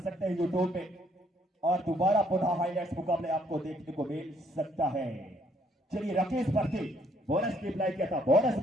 सकते हैं यूट्यूब पे और दोबारा पुनः हाईलाइट्स मुकाबले आपको देखने को मिल सकता है। चलिए रफी स्पर्धी बोनस की अप्लाई किया था, बोनस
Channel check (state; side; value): normal; both; correlation 0.67